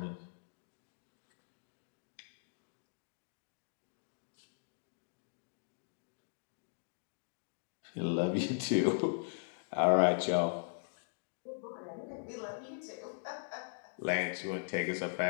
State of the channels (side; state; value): right; silent; digital silence